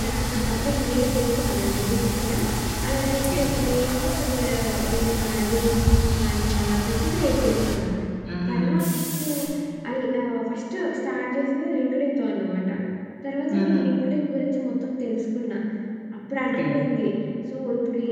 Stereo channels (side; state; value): both; identical; correlation 1.00